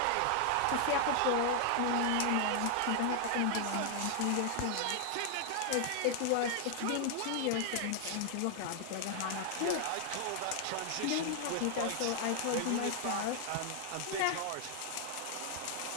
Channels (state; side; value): different; both; correlation 0.00